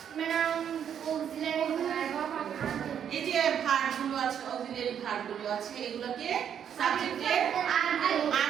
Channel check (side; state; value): left; quieter; 8.7 dB